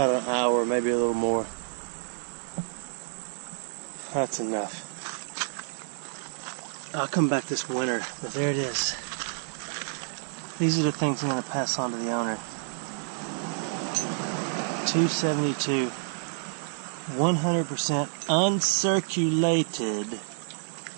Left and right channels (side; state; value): left; silent; 59 dB below the other